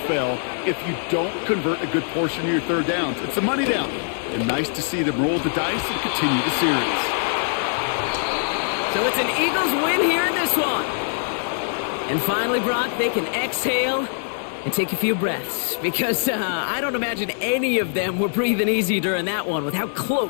if you don't convert a good portion of your 3rd downs. It's a money down. And nice to see them roll the dice and continue the series. So it's an Eagles win here in this one. And finally, Brock, they can exhale and take a few breaths, because I don't imagine any of them were breathing easy during that one with how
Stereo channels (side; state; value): right; silent; digital silence